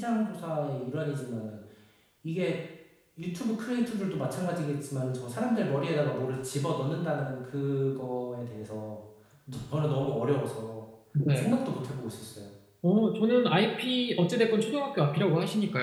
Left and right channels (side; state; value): both; identical; correlation 1.00